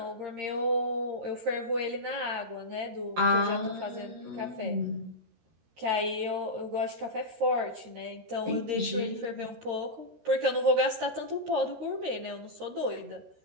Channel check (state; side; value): late; left; 13 ms